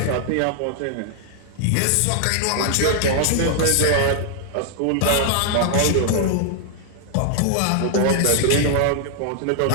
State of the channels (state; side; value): different; both; correlation -0.01